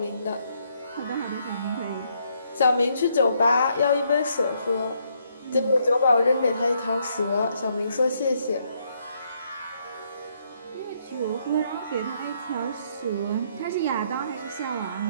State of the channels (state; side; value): inverted; both; correlation -0.73